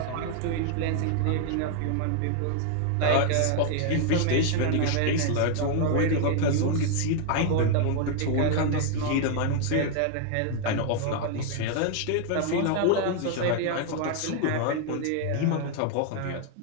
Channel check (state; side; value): different; both; correlation 0.00